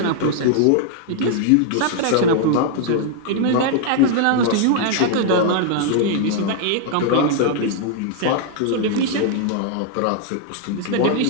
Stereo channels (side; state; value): both; different; correlation 0.00